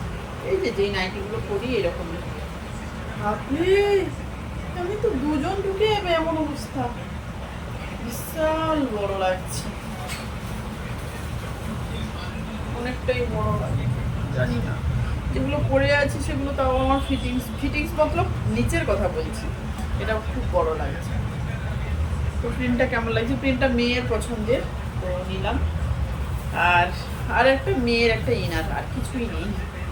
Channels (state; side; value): identical; both; correlation 1.00